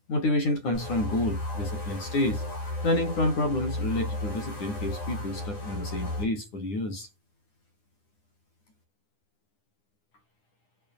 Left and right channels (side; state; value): right; late; 9.8 ms